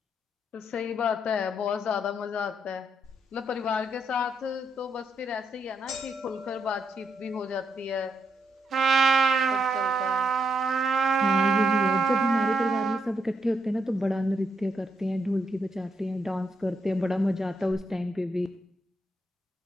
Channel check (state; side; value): normal; both; correlation 0.79